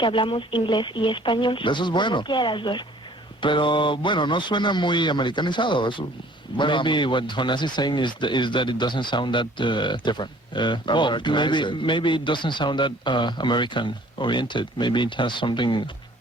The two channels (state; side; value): normal; both; correlation 0.54